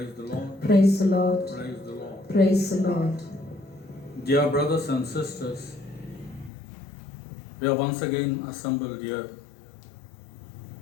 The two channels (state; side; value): drops out; right; at 6.5 s